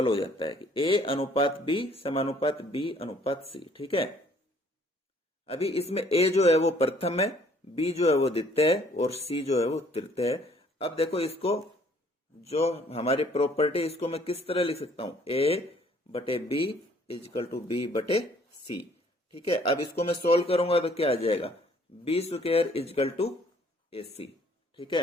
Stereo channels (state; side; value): normal; both; correlation 0.60